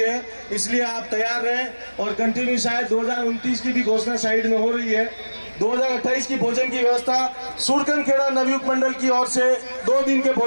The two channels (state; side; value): inverted; both; correlation -1.00